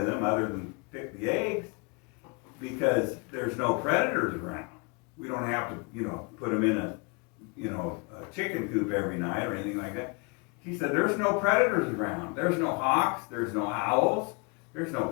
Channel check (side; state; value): right; quieter; 32.8 dB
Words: them other than pick the eggs, because there's no predators around. We don't have to, put them in a chicken coop every night or anything like that. He said, there's no predators around. There's no hawks, there's no owls, there's